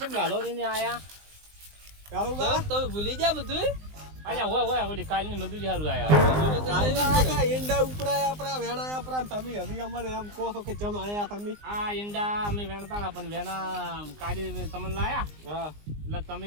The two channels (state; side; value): late; left; 19 ms